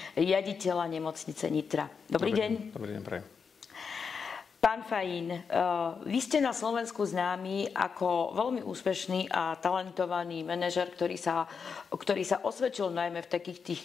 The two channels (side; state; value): right; quieter; 5.8 dB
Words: riaditeľa nemocnice Nitra. Dobrý deň. Dobrý deň, prajem. Pán Fajín, vy ste na Slovensku známi ako veľmi úspešný a talentovaný manažer, ktorý sa osvedčil najmä v takých tých